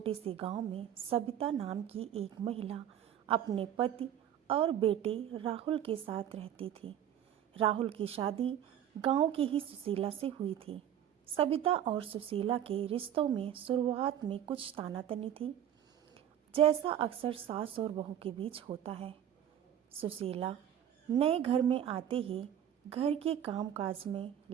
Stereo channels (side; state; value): left; quieter; 10.3 dB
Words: से गांव में सबिता नाम की एक महिला अपने पति और बेटे राहुल के साथ रहती थी। राहुल की शादी गांव की ही सुशीला से हुई थी। सबिता और सुशीला के रिश्तों में शुरुआत में कुछ तानातनी थी, जैसा अक्सर सास और बहू के बीच होता है। सुशीला नए घर में आते ही घर के कामकाज में